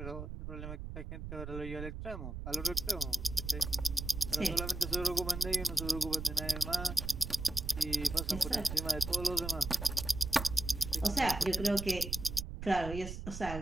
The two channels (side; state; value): right; noise; rumble, 7 dB below the sound